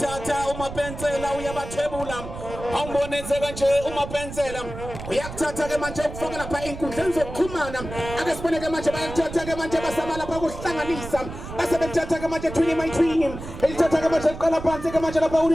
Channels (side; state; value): right; noise; rumble, 10 dB below the sound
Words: umapensela uyabathebula awumbonenzeka nje umapensela uyakuthatha ke manje ukufaka lapha inkundleni zokuxhumana ake sibone ke manje bayathatha ke manje basama lapha kuhlanganisa basebethatha ke manje twini elithatha ke manje liqala phansi ke manje lapha